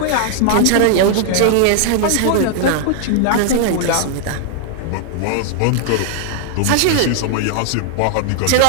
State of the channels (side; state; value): both; different; correlation 0.00